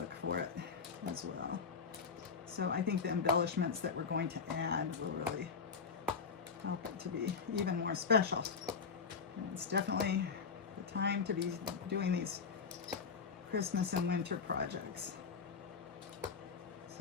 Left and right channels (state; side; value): quieter; right; 5.5 dB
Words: for it as well. So I think the embellishments that we're going to add will really help it to be even more special. And it's definitely the time to be doing these Christmas and winter projects.